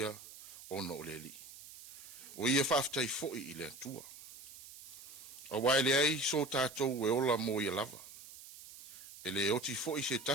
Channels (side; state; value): right; noise; hiss, 16 dB below the sound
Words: ono o le li. O ia whaafitai fo I le atua. A wai le ai so tātou e ola mo ia lava. E le oti fo I se